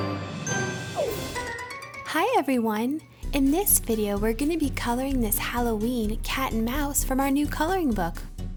Hi everyone! In this video, we're going to be coloring this Halloween cat and mouse from our new coloring book.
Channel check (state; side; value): identical; both; correlation 1.00